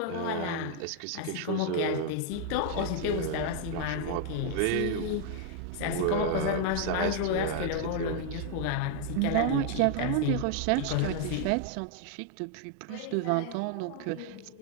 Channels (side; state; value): both; different; correlation 0.00